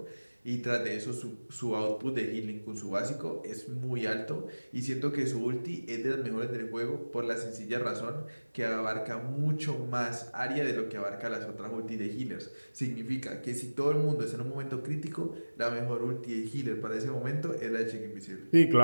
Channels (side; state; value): both; inverted; correlation -1.00